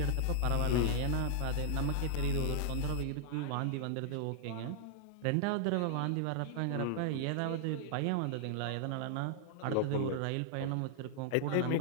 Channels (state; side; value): different; both; correlation -0.01